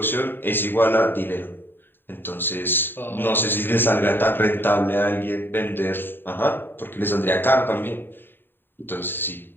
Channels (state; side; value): late; right; 0.096 ms